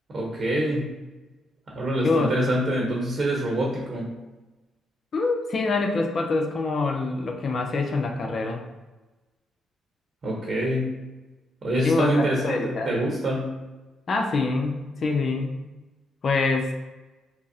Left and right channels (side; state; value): both; normal; correlation 0.79